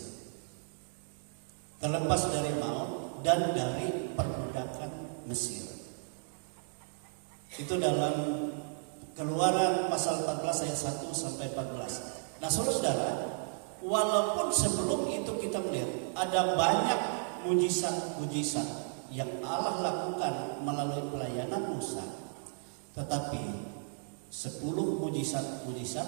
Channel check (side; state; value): left; silent; digital silence